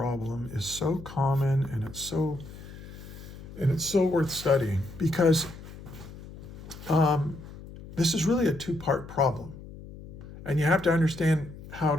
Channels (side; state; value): left; noise; hum, 15 dB below the sound